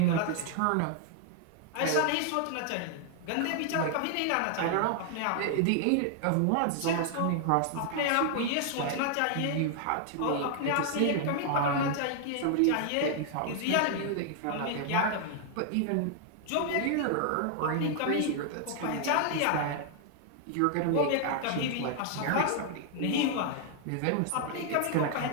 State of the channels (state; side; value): different; both; correlation 0.00